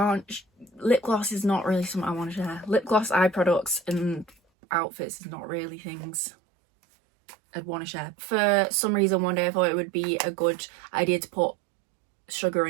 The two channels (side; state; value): left; drops out; at 4.4 s